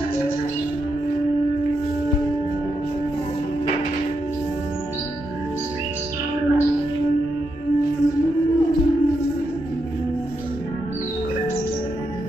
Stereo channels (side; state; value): both; normal; correlation 0.83